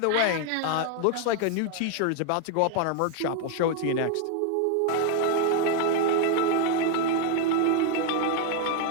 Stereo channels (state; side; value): different; both; correlation 0.01